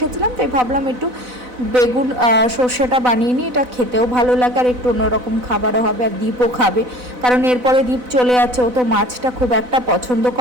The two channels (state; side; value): late; left; 4.0 ms